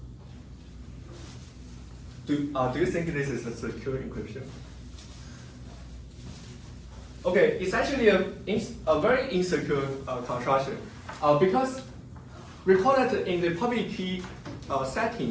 Do you think this is a secure encryption? Okay, it's actually a very insecure construction because recall that in the public key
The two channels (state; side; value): identical; both; correlation 1.00